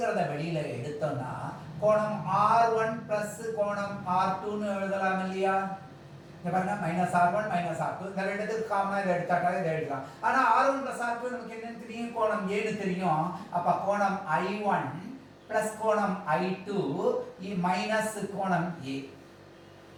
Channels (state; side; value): identical; both; correlation 1.00